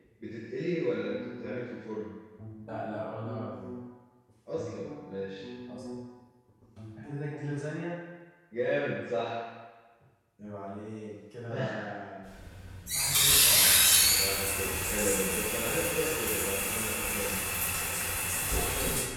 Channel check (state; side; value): identical; both; correlation 1.00